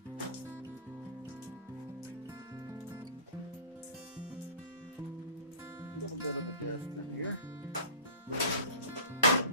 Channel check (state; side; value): inverted; both; correlation -0.39